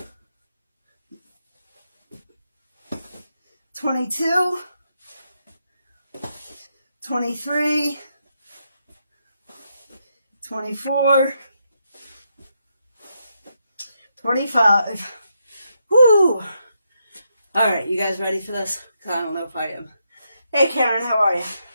22, 23, 24, 25. Woo! All right, you guys ready for this? Because I don't know if I am. Hey, Karen, how are you?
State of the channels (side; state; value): both; inverted; correlation -0.81